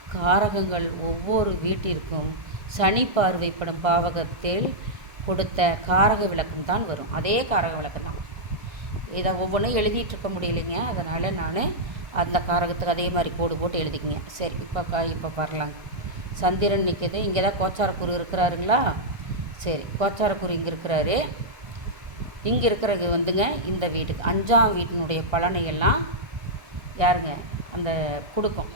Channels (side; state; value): left; late; 1.5 ms